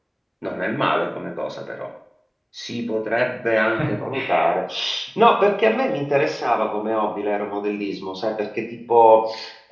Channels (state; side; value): identical; both; correlation 1.00